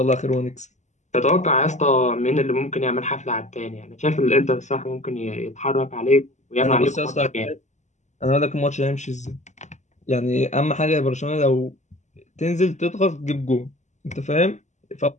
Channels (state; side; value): late; right; 0.34 ms